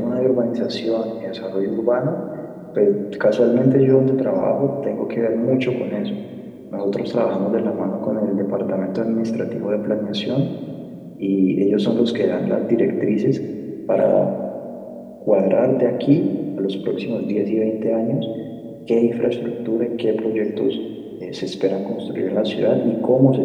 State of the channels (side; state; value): both; identical; correlation 1.00